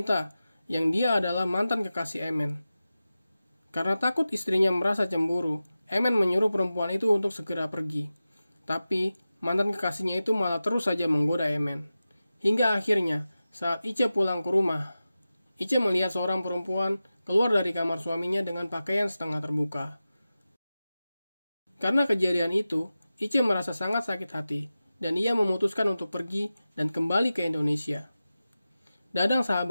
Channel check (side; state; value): both; inverted; correlation -0.94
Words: yang dia adalah mantan kekasih Emen. Karena takut istrinya merasa cemburu, Emen menyuruh perempuan itu untuk segera pergi. Tapi mantan kekasihnya itu malah terus saja menggoda Emen. Hingga akhirnya, saat Ice pulang ke rumah, Ice melihat seorang perempuan keluar dari kamar suaminya dengan pakaian setengah terbuka. Karena kejadian itu, Ice merasa sangat sakit hati, dan ia memutuskan untuk pergi dan kembali ke Indonesia. Dadang